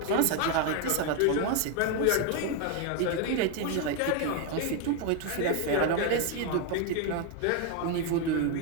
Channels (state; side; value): different; both; correlation 0.01